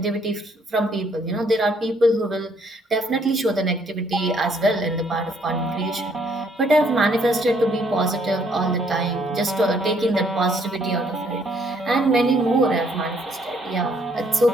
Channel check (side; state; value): both; normal; correlation 0.67